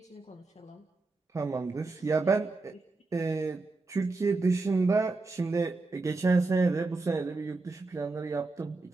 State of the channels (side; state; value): left; quieter; 3.5 dB